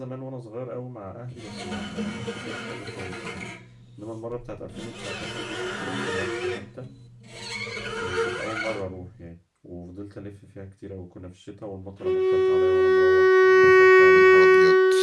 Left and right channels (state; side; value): identical; both; correlation 1.00